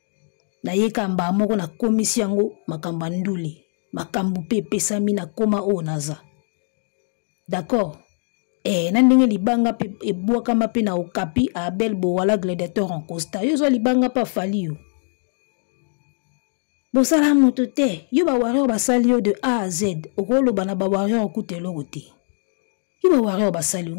na ye kamba moko na komisi yango makamba ndule makambu pe pesami na koma o naza d'accord na ndenge libanga pe ebwaka mape na okapi a Abel Bowala gladiateur en Costa yo zo libanga pa fali yo bosala moto te yo ba warrior basali yo de A à Z okolo bana ba warrior okutelo kote yo ba warrior basali yo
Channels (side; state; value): right; silent; 58 dB below the other